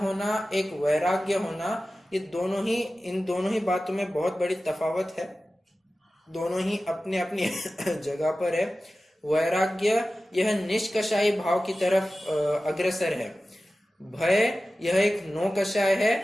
एक वैराग्य होना, ये इन दोनों ही बातों में बहुत बड़ी तफावत है। दोनों ही अपने अपनी जगह पर है। वैराग्य यह निष्कषायी भाव की तरफ अग्रसर है। भय यह एक नौकषाय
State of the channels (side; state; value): both; normal; correlation 0.95